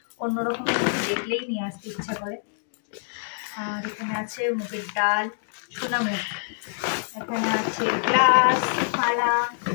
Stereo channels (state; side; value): silent; right; digital silence